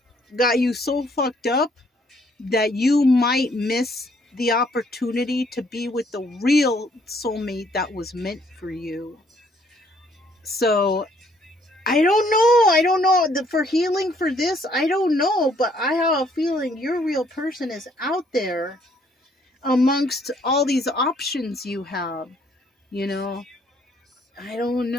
got you so fucked up that you might miss the opportunity to be with the real soulmate that was meant for you. So I don't know for healing for this, I don't know, but I have a feeling your real person is out there amongst all these options you have, you know. I don't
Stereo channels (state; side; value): normal; both; correlation 0.65